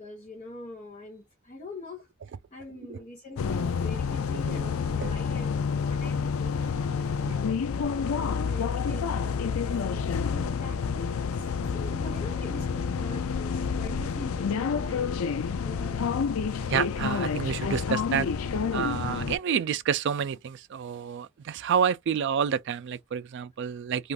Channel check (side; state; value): both; normal; correlation 0.23